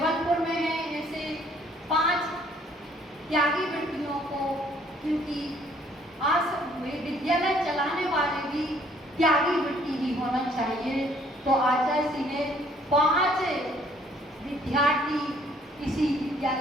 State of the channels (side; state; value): both; normal; correlation 0.61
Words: में हैं। ऐसे 5 त्यागी बेटियों को, क्योंकि आज विद्यालय चलाने वाले भी त्यागी वृत्ति ही होना चाहिए, तो आचार्य श्री ने 5 विद्यार्थी इसी